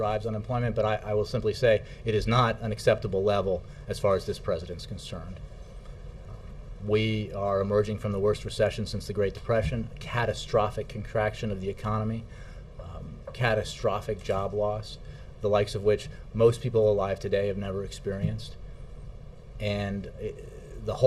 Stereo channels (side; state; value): both; identical; correlation 1.00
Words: unemployment, but I will simply say it is not an acceptable level as far as this president's concerned. We are emerging from the worst recession since the Great Depression, catastrophic contraction of the economy, catastrophic job loss, the likes of which most people alive today have never experienced. And the